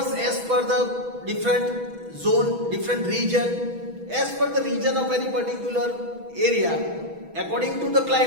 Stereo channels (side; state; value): left; late; 6.1 ms